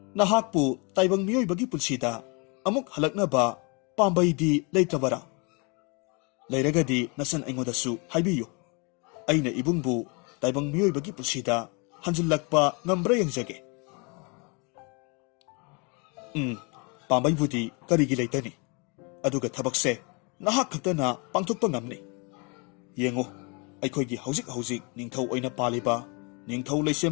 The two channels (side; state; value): right; quieter; 31.7 dB